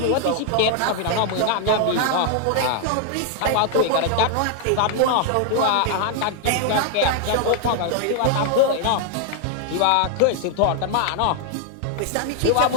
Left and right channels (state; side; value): different; both; correlation 0.00